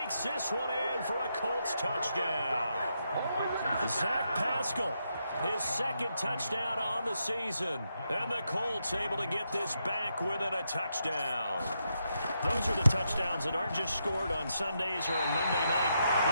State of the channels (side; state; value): both; inverted; correlation -0.82